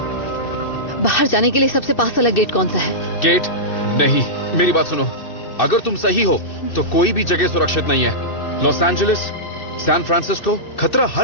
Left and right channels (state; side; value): late; right; 2.6 ms